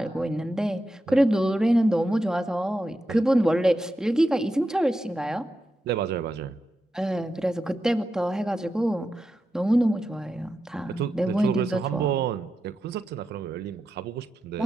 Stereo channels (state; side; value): normal; both; correlation 0.88